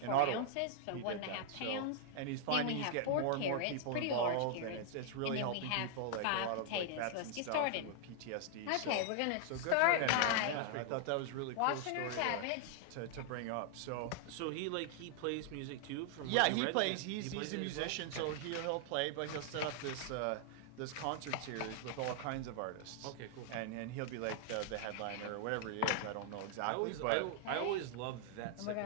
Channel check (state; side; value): different; both; correlation -0.01